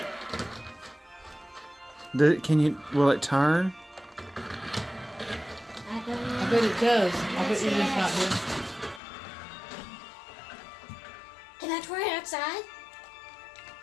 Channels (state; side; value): drops out; right; at 9.0 s